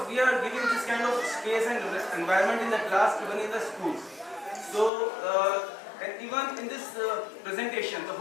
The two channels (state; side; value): drops out; right; at 4.9 s